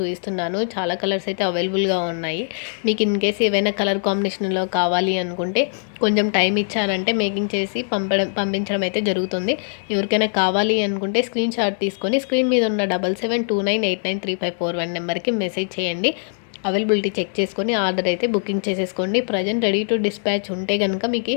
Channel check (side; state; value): right; silent; 65 dB below the other